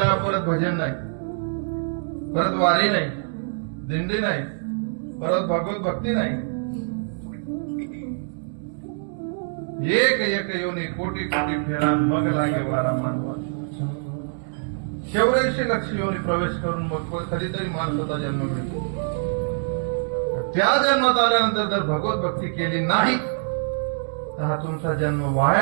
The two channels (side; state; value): left; silent; digital silence